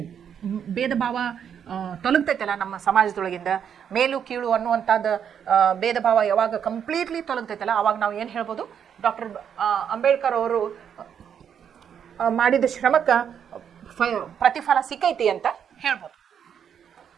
ಭೇದ ಭಾವ ತೊಲಗ್ತೈತಲ್ಲ ನಮ್ಮ ಸಮಾಜದೊಳಗಿಂದ, ಮೇಲು ಕೀಳು ಅನ್ನುವಂಥದ್ದು ಭೇದ ಭಾವ ಯಾವಾಗ ಕಂಪ್ಲೀಟ್ಲಿ ತೊಲಗ್ತೈತಲ್ಲ, ಅವಾಗ ನಾವು ಏನು ಹೇಳ್ಬೋದು? ಡಾಕ್ಟರ್ ಅಂಬೇಡ್ಕರ್ ಅವರು ಮಾಡಿದ ಶ್ರಮಕ್ಕೆ ಪ್ರತಿಫಲ ಸಿಕ್ಕೈತಿ ಅಂತ ಹೇಳ್ಬೋದು.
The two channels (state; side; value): quieter; left; 8.2 dB